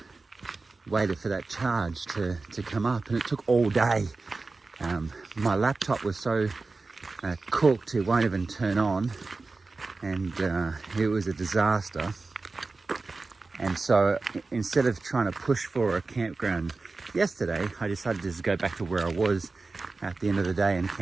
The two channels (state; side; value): quieter; left; 3.8 dB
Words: waited for that charge to come up, and it took all day. My laptop was so cooked it won't even turn on, and it was a disaster. And so instead of trying to push for a campground yesterday, I decided to just go back to where I was at the end of the day and